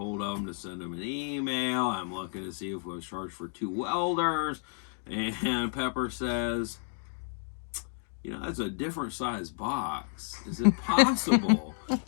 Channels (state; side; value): silent; right; 57 dB below the other